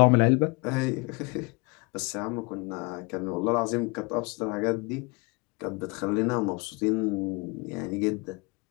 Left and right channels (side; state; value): right; quieter; 28.1 dB